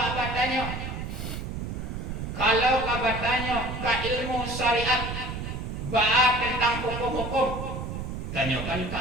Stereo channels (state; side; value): noise; right; rumble, 5 dB below the sound